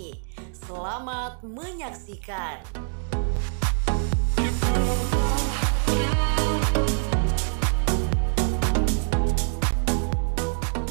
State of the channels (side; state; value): left; silent; digital silence